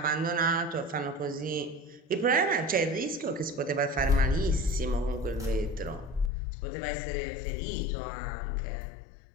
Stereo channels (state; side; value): drops out; right; at 6.3 s